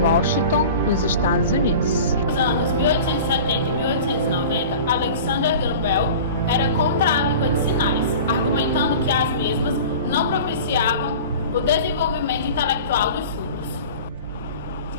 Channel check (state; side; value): inverted; both; correlation -0.38